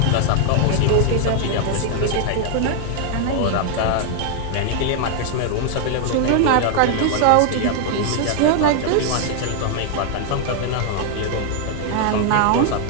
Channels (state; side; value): different; both; correlation 0.00